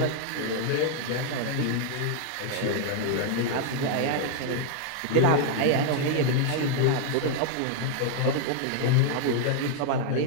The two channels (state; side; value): different; both; correlation 0.00